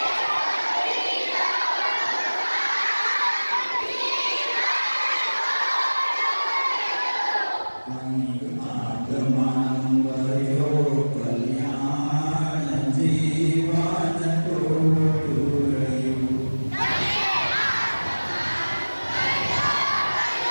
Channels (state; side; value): inverted; both; correlation -1.00